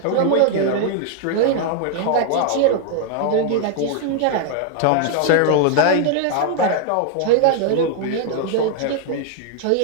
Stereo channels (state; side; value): different; both; correlation 0.00